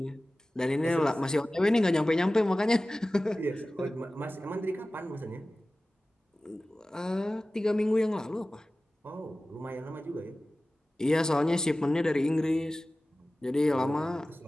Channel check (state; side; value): normal; both; correlation 0.97